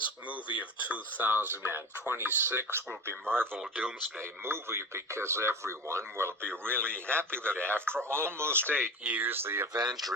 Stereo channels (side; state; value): both; normal; correlation 0.31